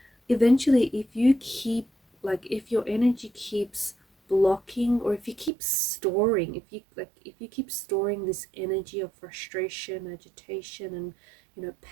Eventually, if you keep, if your energy keeps blocking, or if you keep storing, if you keep storing this energy of frustration, agitation, and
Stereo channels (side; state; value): left; drops out; at 5.5 s